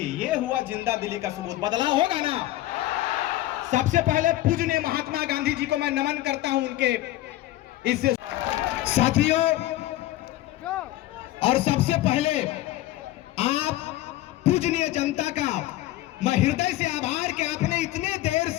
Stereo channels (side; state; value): right; quieter; 15.7 dB